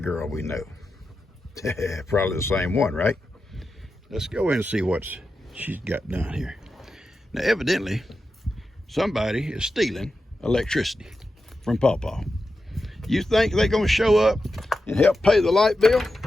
we know. Probably the same one, right? Let's go in and see what she's got done here. Now, evidently, somebody is stealing electricity from Pawpaw. You think they're going to show up and help pay the light bill?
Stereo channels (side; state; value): both; normal; correlation 0.90